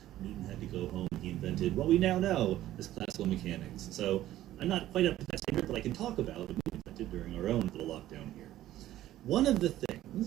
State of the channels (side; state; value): left; quieter; 13.9 dB